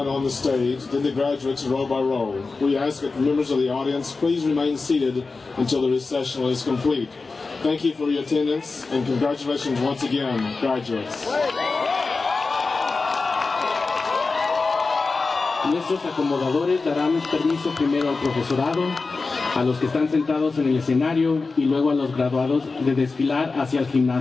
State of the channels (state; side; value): quieter; right; 4.0 dB